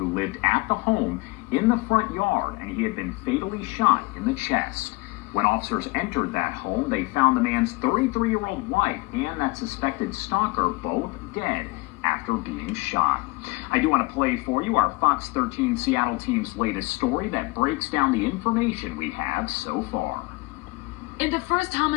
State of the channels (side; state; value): right; quieter; 25.1 dB